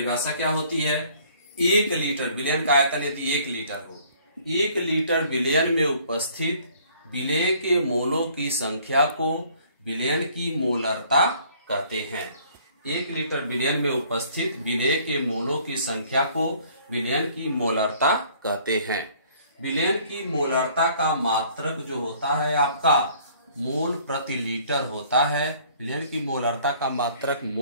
क्या होती है? 1 लीटर विलयन का आयतन यदि 1 लीटर हो, 1 लीटर विलयन में उपस्थित विलेय के मोलों की संख्या को विलयन की मोलरता कहते हैं। 1 लीटर विलयन में उपस्थित विलेय के मोलों की संख्या को विलयन की मोलरता कहते हैं। विलयन की मोलरता का मात्रक जो होता है आपका मोल प्रति लीटर होता है। विलयन की मोलरता का मात्रक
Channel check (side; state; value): both; inverted; correlation -0.58